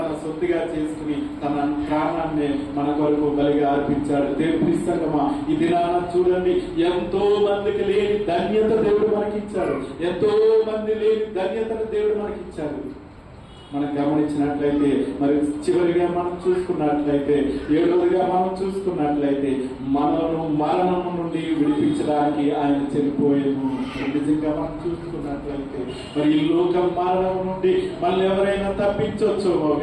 సొత్తుగా చేసుకుని తన ప్రాణాన్ని మన కొరకు బలిగా అర్పించాడు. దేవుని ప్రియసంగమా, ఈ దినాన చూడండి, ఎంతో మందికి లేని ధన్యత దేవుడు మనకిచ్చాడు. ఎంతో మంది లేని ధన్యతను దేవుడు మనకిచ్చాడు. మనం గమనించినట్లయితే మరి చివరిగా మనం చూసుకున్నట్లయితే 7వదిగా మనం చూసుకున్నట్లయితే మనను మరణం నుండి విడిపించడానికి ఆయన చనిపోయాము. నిజంగా మనం చూసుకున్నట్లయితే మరి ఈ లోక మరణం నుండి మళ్ళీ ఎవరైనా తప్పించవచ్చేమో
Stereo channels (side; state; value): both; identical; correlation 1.00